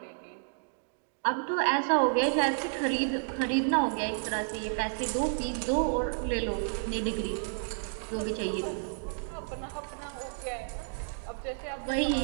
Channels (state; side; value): silent; left; digital silence